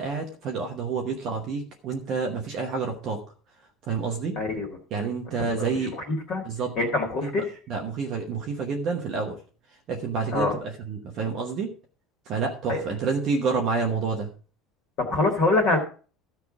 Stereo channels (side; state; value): both; normal; correlation 0.32